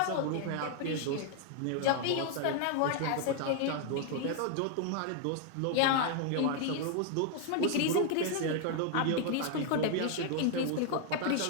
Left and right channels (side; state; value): both; different; correlation 0.00